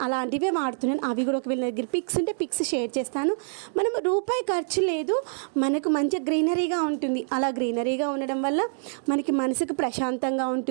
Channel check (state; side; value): silent; left; digital silence